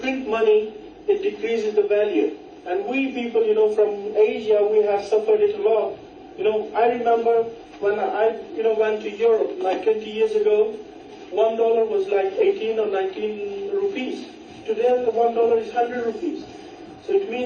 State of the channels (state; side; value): identical; both; correlation 1.00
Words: money, it decreases the value. And we people, from Asia, we have suffered it a lot. I remember when I, went to Europe, like 20 years ago, $1 was like 18 or 19 rupees. Today, the $1 is 100 rupees. So it